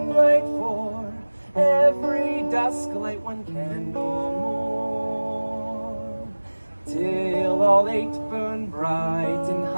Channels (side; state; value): both; inverted; correlation -1.00